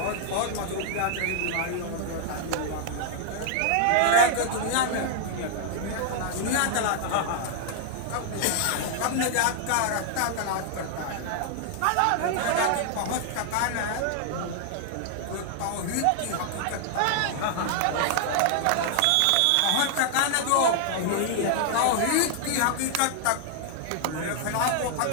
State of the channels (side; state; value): both; different; correlation 0.00